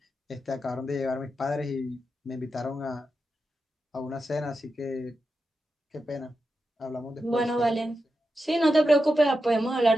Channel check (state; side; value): normal; both; correlation 0.89